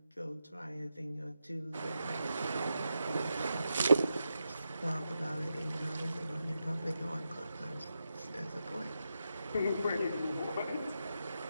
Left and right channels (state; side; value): inverted; both; correlation -0.88